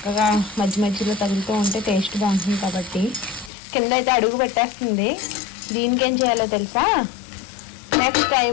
మధ్య మధ్యలో తగులుతూ ఉంటే టేస్ట్ బాగుంటుంది కాబట్టి. కింద అయితే అడుగు పెట్టేస్తుంది. దీనికి ఏం చేయాలో తెలుసా? నెక్స్ట్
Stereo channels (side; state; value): right; drops out; at 3.5 s